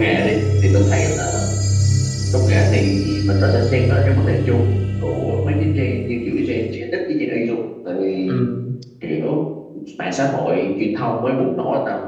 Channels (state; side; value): identical; both; correlation 1.00